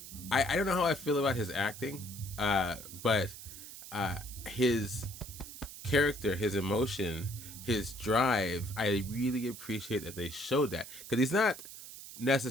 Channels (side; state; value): right; noise; hiss, 13 dB below the sound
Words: I don't know how I feel about his acting, but his character, his emotion, his drive, I really appreciate that they showed that, because he's not